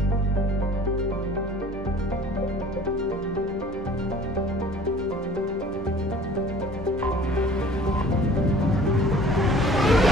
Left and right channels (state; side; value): normal; both; correlation 0.50